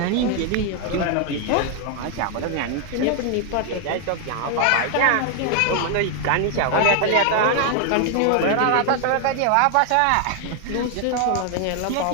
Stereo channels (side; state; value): both; different; correlation 0.00